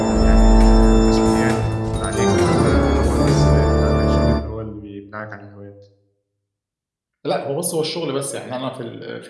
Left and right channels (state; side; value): identical; both; correlation 1.00